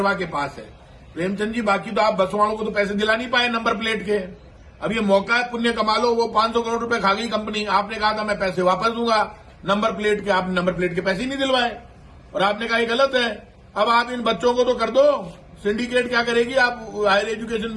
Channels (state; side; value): identical; both; correlation 1.00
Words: के पास है। प्रेमचंद जी, बाकी तो आप बस वालों को तो पैसे दिला नहीं पाए नंबर प्लेट के। अब ये मौका है, पुण्य कमा लो। वो 500 करोड़ रुपए खा गई कंपनी, आपने कहा था मैं पैसे वापस दूंगा नंबर प्लेट के, आपने नंबर प्लेट के पैसे ही नहीं दिलवाए और आपने कहा ये गलत है। अब आप इन बच्चों को तो कर दो। सिंडिकेट क्या करेगी? आप हायर एजुकेशन